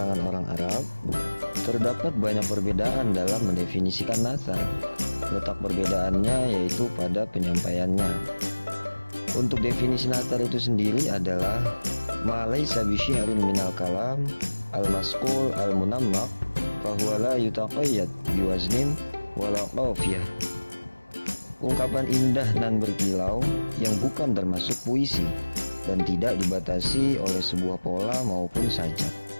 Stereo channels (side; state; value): both; inverted; correlation -1.00